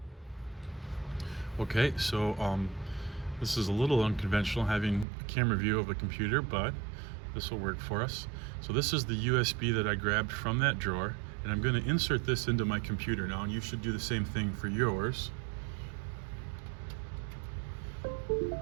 Okay, so this is a little unconventional having a camera view of a computer, but this will work for us. So this is the USB that I grabbed from that drawer, and I'm going to insert this into my computer now, and you should do the same thing for yours.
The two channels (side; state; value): left; drops out; at 5.1 s